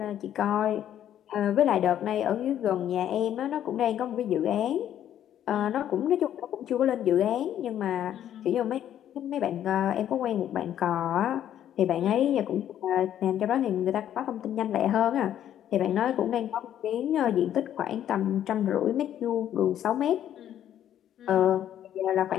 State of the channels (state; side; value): quieter; right; 10.8 dB